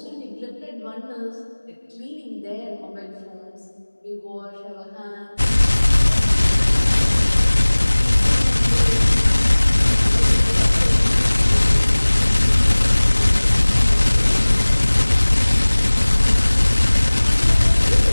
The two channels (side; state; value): both; inverted; correlation -1.00